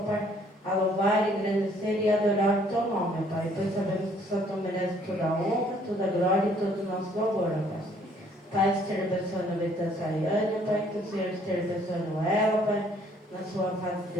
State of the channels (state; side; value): normal; both; correlation 0.62